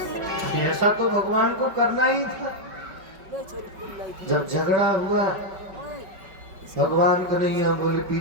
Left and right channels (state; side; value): late; left; 5.2 ms